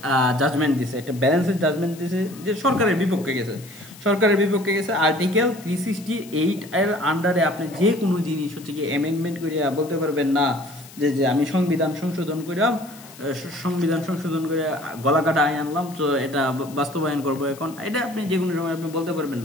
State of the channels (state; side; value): noise; left; hiss, 20 dB below the sound